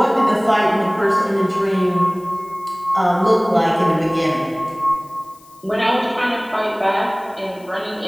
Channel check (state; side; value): noise; left; hiss, 27 dB below the sound